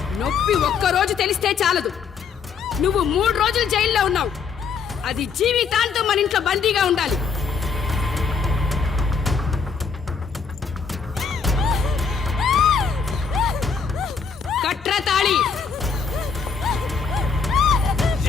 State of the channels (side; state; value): right; quieter; 5.7 dB